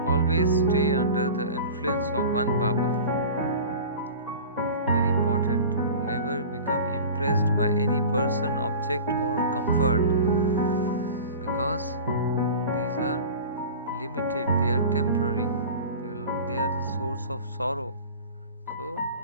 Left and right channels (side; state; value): both; inverted; correlation -0.37